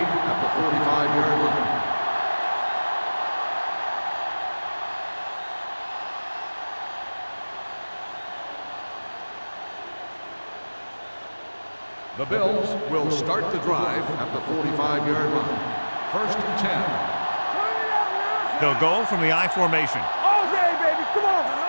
at the 45-yard line. The Bills will start the drive at the 45-yard line. First and 10. They'll go from the I formation. All day, baby. Come on.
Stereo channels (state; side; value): inverted; both; correlation -1.00